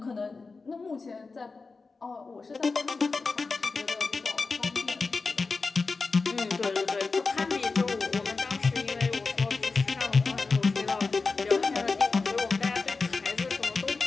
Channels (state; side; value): quieter; right; 4.2 dB